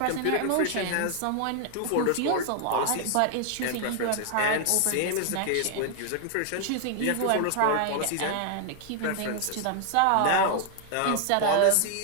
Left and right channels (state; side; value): different; both; correlation 0.00